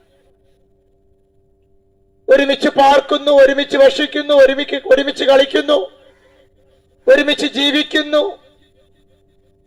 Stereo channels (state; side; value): identical; both; correlation 1.00